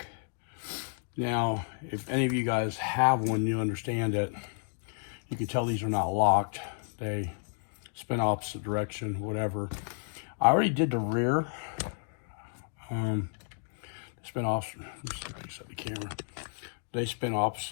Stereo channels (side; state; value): right; silent; 57 dB below the other